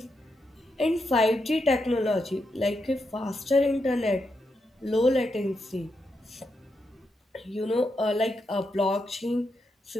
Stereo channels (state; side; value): normal; both; correlation 0.84